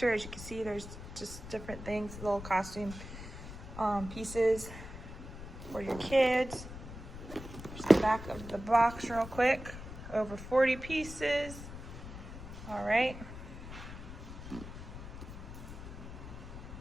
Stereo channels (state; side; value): noise; left; rumble, 11 dB below the sound